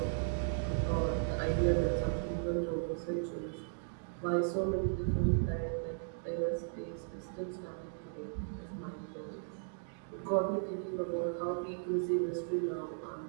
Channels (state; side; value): silent; left; digital silence